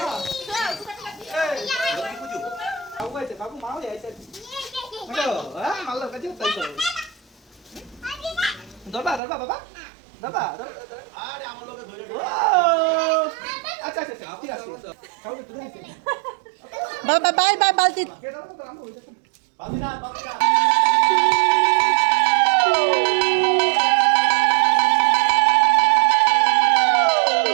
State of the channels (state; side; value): drops out; left; at 9.2 s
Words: বাবা বাই বাই বালতি।